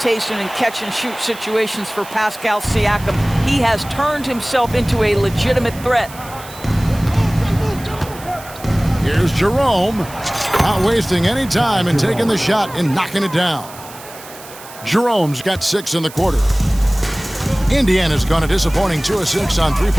in catch-and-shoot situations for Pascal Siakam. He has turned himself into a legitimate threat. Here's Jerome, not wasting any time and taking the shot and knocking it down. Jerome's got 6 in the quarter. Indiana's gone a disappointing 2 of 6 on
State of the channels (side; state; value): right; noise; hiss, 17 dB below the sound